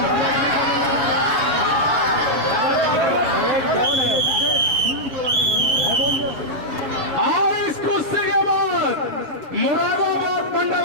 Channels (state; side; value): late; left; 6.7 ms